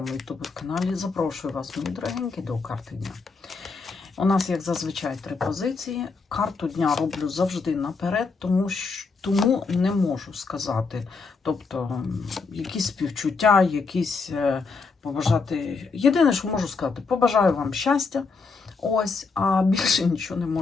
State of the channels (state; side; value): quieter; right; 4.5 dB